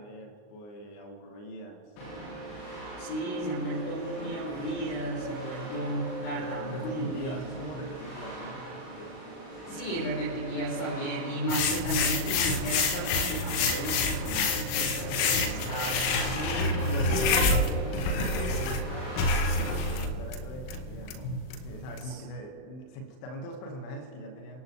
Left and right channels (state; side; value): late; right; 38 ms